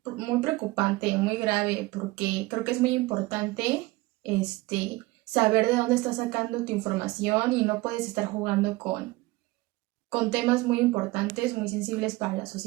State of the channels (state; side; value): quieter; left; 20.8 dB